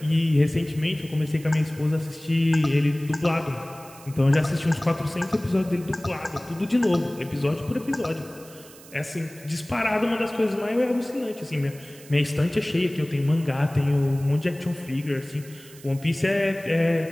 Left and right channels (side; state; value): right; noise; hiss, 21 dB below the sound